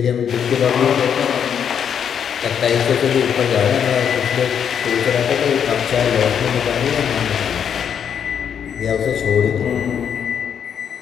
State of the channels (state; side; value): quieter; right; 8.1 dB